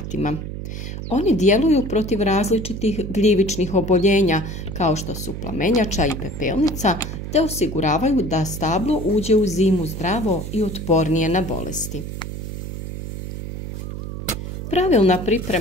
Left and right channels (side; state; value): right; noise; hum, 7 dB below the sound